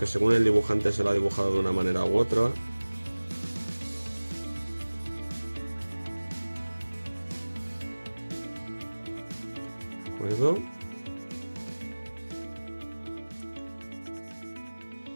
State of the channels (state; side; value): inverted; both; correlation -1.00